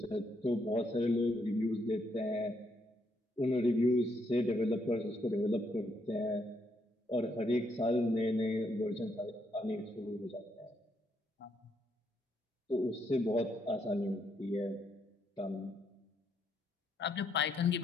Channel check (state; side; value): normal; both; correlation 0.76